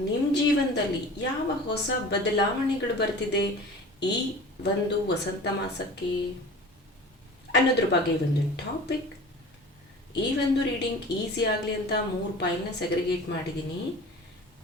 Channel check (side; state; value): both; normal; correlation 0.40